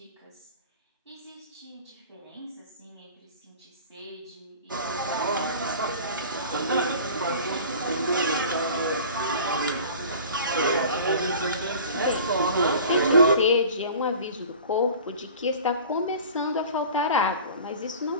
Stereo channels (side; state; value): both; inverted; correlation -0.41